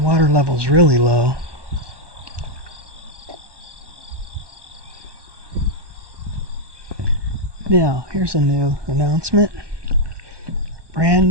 level's really low. Now, here's a new announcement. Brand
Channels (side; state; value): left; late; 1.2 ms